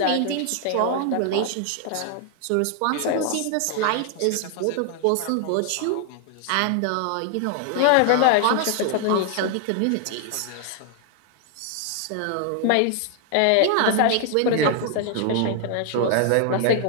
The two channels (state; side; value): different; both; correlation 0.00